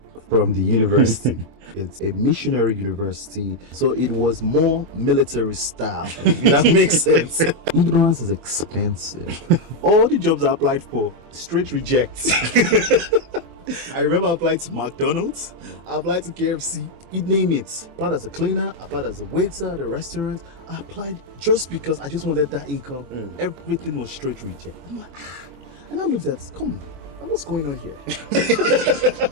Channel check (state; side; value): late; left; 24 ms